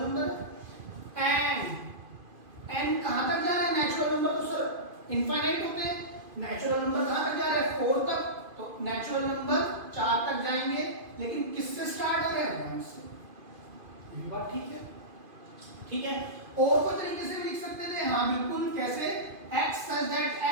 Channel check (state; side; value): late; left; 2.5 ms